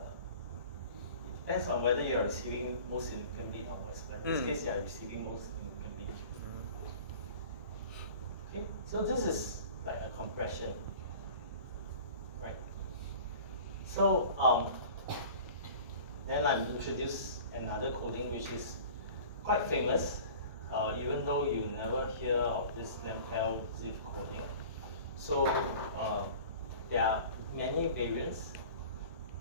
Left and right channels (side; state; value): both; inverted; correlation -0.42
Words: depends on whether you're receiving most significant bit or most. But in this case, you're receiving most significant bit. Okay. So this is like a compression, right? So then I introduce another coding which is quite famous, even though you never hear of this Lampel zip coding. So there are many variants.